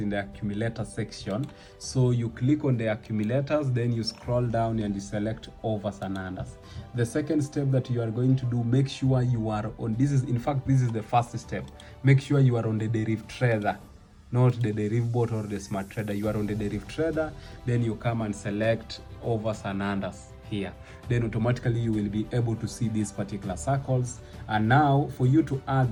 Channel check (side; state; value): both; identical; correlation 1.00